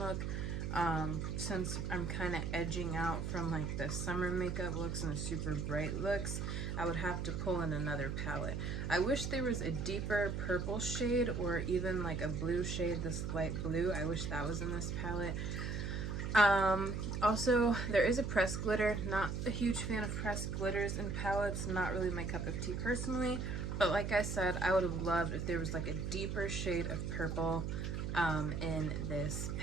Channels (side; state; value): right; noise; hum, 2 dB below the sound